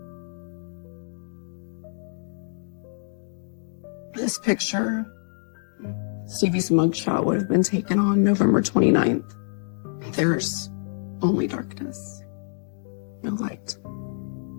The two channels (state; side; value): silent; right; digital silence